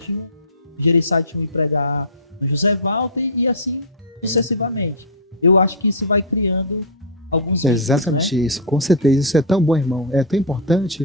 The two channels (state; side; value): normal; both; correlation -0.11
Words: 1 e pregar no José Walter e assim sucessivamente. Eu acho que isso vai criando alguns vínculos, Exatamente né? isso, com certeza. Isso é tão bom, irmão. É tão